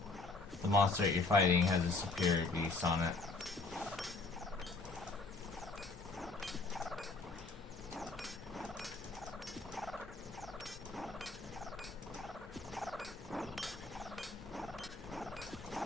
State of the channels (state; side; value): quieter; right; 3.5 dB